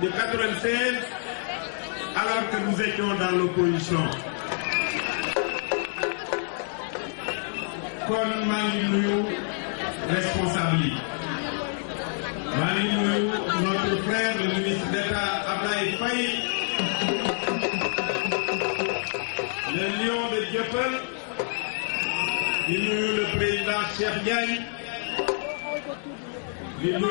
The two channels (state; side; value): silent; right; 59 dB below the other